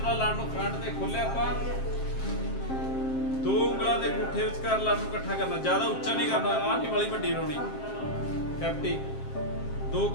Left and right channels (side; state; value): right; late; 7.5 ms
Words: ਲੜ ਨੂੰ ਫਰੰਟ ਤੇ ਖੋਲਿਆ ਆਪਾਂ, ਦੋ ਉਂਗਲਾਂ ਦੇ ਅੰਗੂਠੇ ਵਿਚਕਾਰ ਲੜ ਨੂੰ ਇਕੱਠਾ ਕਰਨਾ, ਜ਼ਿਆਦਾ ਉੱਚਾ ਨਹੀਂ ਕਰਨਾ। ਆਹ ਨਹੀਂ ਵਾਲੀ ਵੱਡੀ ਬਣਾਉਣੀ ਕੈਪਟੀ, ਦੋ